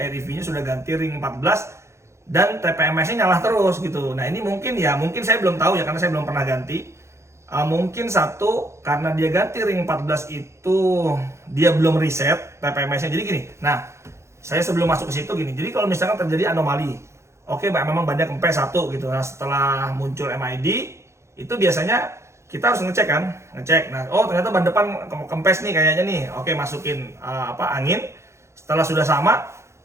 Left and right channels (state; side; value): late; left; 0.13 ms